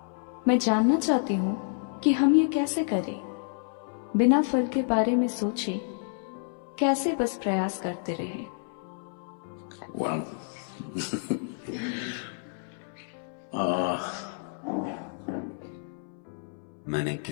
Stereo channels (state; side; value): silent; right; 58 dB below the other